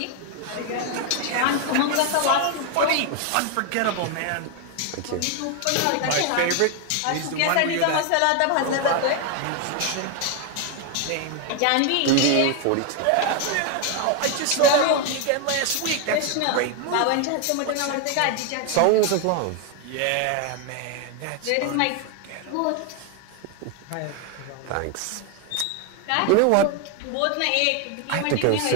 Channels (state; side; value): different; both; correlation 0.01